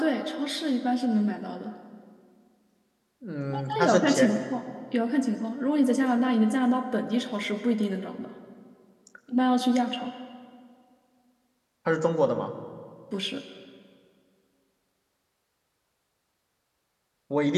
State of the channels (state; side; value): identical; both; correlation 1.00